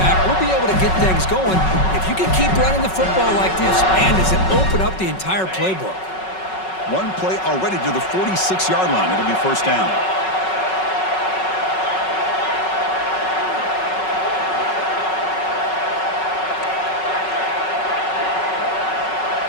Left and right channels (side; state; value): right; late; 5.4 ms